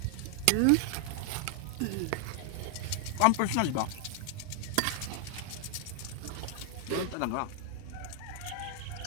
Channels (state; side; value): different; both; correlation 0.00